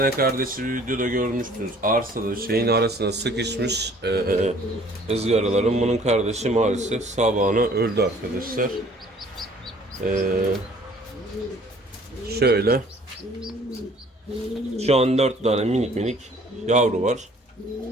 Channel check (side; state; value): both; normal; correlation 0.55